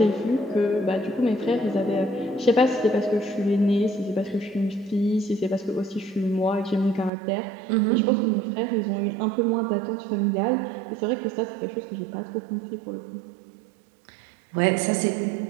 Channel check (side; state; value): left; drops out; at 7.1 s